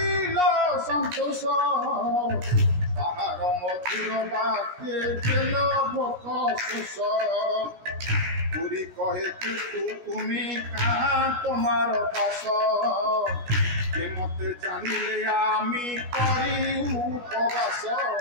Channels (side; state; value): left; late; 17 ms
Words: সন্তোষ তাহার মধুর বাক্যে গেল ভোক শোষ পুরী কহে কিন্তু তুমি কাহা তোমার বাস কে মতে জানিলে আমি করি উপবাস।